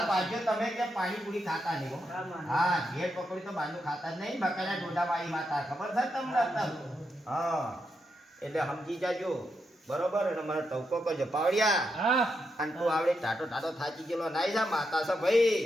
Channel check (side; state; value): both; normal; correlation 0.83